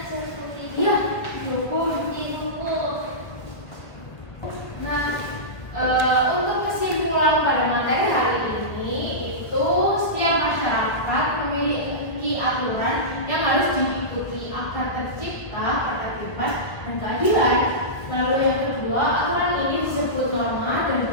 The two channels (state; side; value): late; right; 1.8 ms